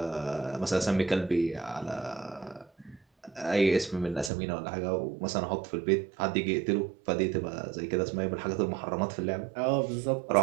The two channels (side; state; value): left; drops out; at 4.3 s